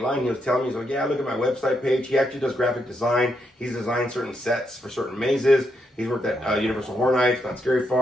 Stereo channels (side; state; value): both; normal; correlation 0.80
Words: line, he was telling me, he's like, yeah, look at my website page. He actually does graphic design. He's designed certain sets for certain mazes. He's worked at Universal Horror Nights, Not Scary